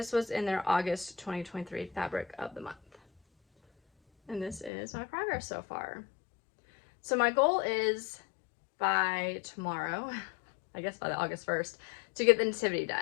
was in their August 2023 fabric of the month. And this is my progress so far. So my goal is by tomorrow, I guess by the August 1st, to get the Nativity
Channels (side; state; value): right; drops out; at 4.7 s